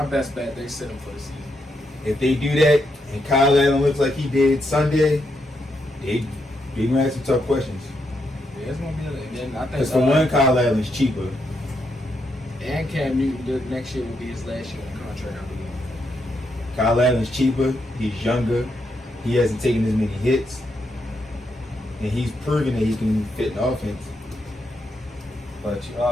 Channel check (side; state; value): both; normal; correlation 0.80